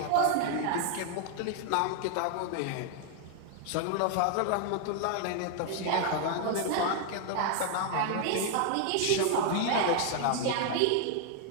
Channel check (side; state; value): both; different; correlation 0.00